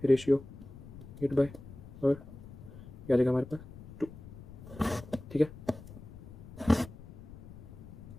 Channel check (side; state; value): left; noise; rumble, 15 dB below the sound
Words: रेशियो 8/, और ये आ जाएगा हमारे पास 2, ठीक है।